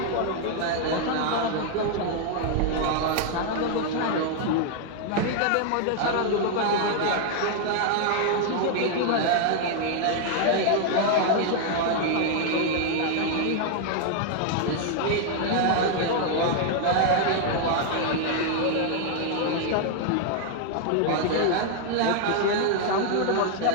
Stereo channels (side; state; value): both; different; correlation 0.00